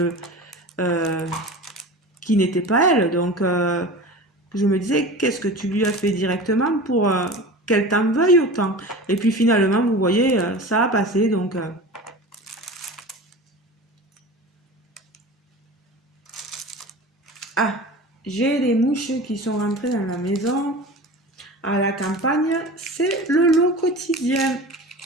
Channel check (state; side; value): normal; both; correlation 0.34